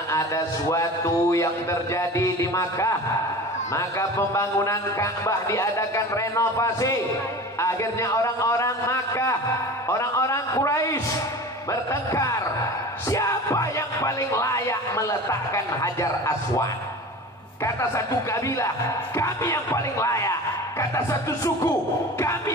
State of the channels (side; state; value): both; normal; correlation 0.36